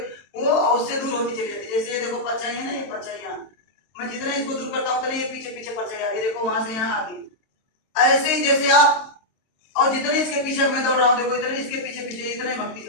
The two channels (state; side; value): late; right; 23 ms